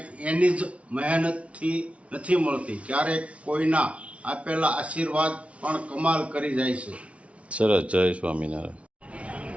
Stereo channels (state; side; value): late; left; 0.063 ms